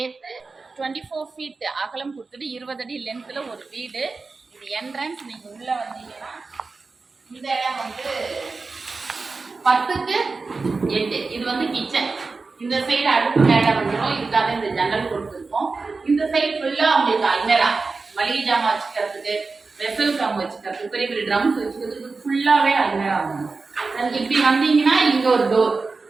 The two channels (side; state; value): left; quieter; 4.1 dB